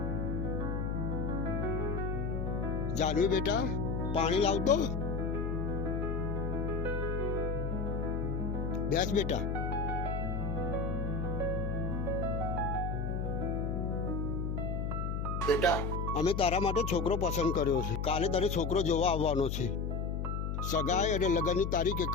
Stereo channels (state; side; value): noise; left; hum, 1 dB below the sound